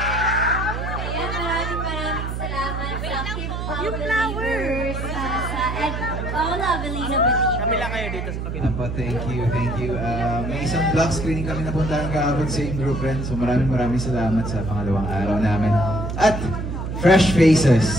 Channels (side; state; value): right; noise; hum, 4 dB below the sound